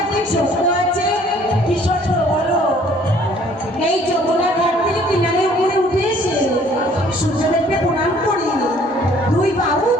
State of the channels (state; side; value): normal; both; correlation 0.58